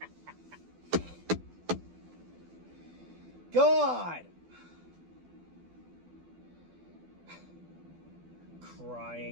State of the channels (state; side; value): late; left; 12 ms